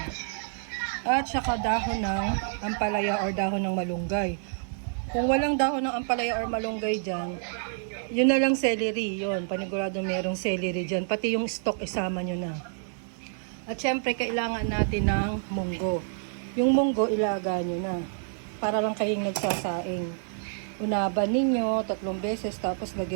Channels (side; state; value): left; silent; digital silence